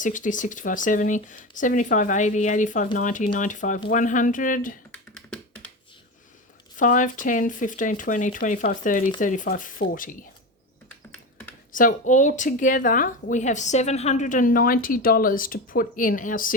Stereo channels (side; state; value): both; normal; correlation 0.22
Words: 65, 70, 75, 80, 85, 90, 95, 100. 5, 10, 15, 20, 25, 30, 35, 40. So altogether, we have $790 to put in our